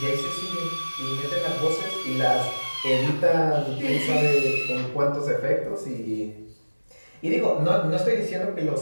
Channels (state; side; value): inverted; both; correlation -1.00